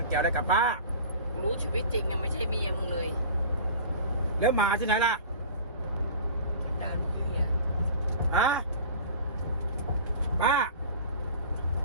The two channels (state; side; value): inverted; both; correlation -0.39